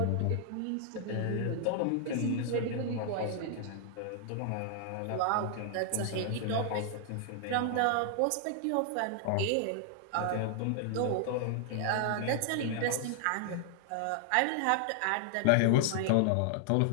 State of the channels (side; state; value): both; different; correlation 0.00